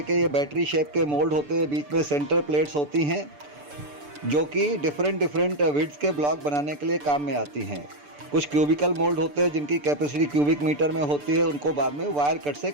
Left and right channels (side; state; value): left; late; 6.8 ms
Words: के ये बैटरी शेप के मोल्ड होते हैं। बीच में सेंटर प्लेट्स होती हैं जो कि डिफरेंट विड्थ के ब्लॉक बनाने के लिए काम में आती हैं। कुछ क्यूबिकल मोल्ड होते हैं जिनकी कैपेसिटी क्यूबिक मीटर में होती है, उनको बाद में वायर कट से